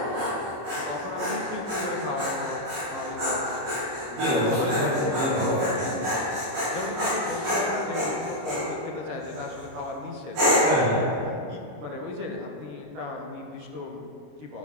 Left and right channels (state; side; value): late; left; 25 ms